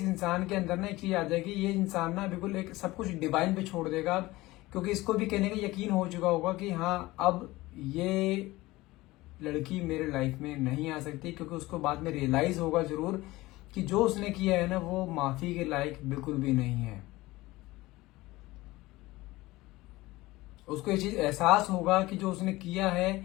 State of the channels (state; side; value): quieter; right; 19.3 dB